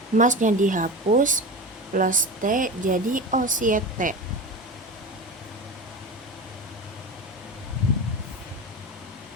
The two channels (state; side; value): normal; both; correlation 0.27